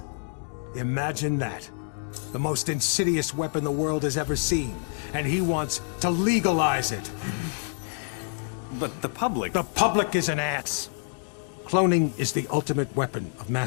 Imagine that. The most insidious weapon the world has ever seen, and he wants to legalize it. But the public... The public is an ass. Cloning is the ultimate weapon of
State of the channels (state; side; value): silent; right; digital silence